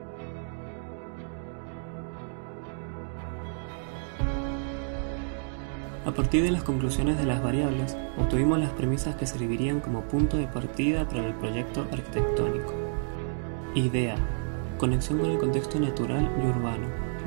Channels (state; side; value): silent; left; digital silence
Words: A partir de las conclusiones de las variables, obtuvimos las premisas que servirían como punto de partida para el proyecto arquitectónico. Idea: conexión con el contexto natural y urbano,